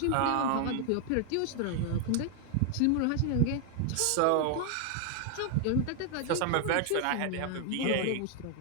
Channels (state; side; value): different; both; correlation 0.00